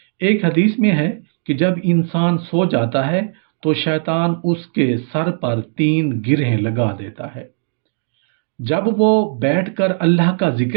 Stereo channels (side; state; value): left; silent; digital silence